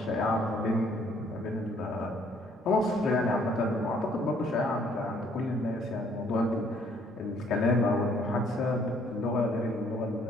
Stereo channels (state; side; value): normal; both; correlation 0.63